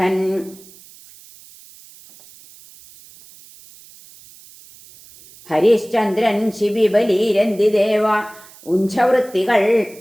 ഹരിശ്ചന്ദ്രൻ ശിബിബലീരന്തിദേവ ഉഞ്ചവൃത്തികൾ.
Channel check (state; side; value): noise; right; hiss, 23 dB below the sound